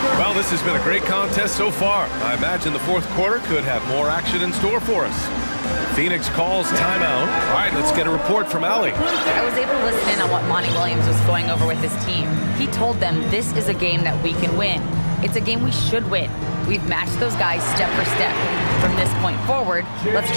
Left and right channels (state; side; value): inverted; both; correlation -1.00